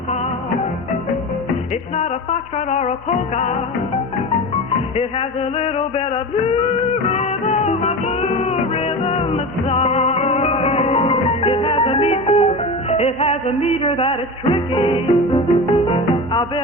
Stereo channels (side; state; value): both; normal; correlation 0.28